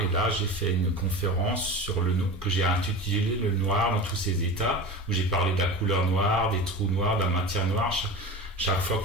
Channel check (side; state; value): both; normal; correlation 0.32